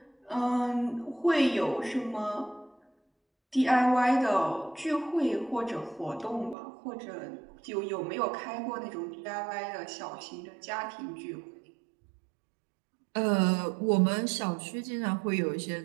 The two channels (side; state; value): left; drops out; at 6.6 s